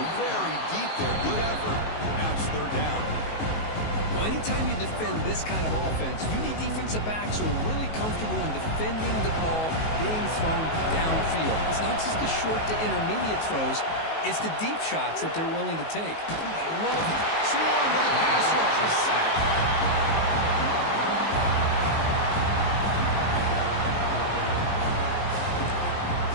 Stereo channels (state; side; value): late; right; 19 ms